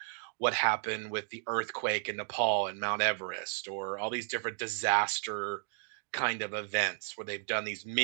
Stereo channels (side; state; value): left; silent; digital silence